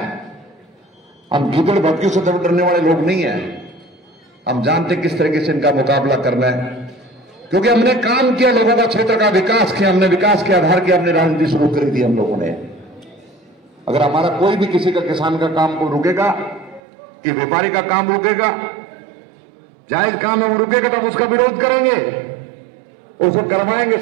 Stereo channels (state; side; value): drops out; left; at 16.8 s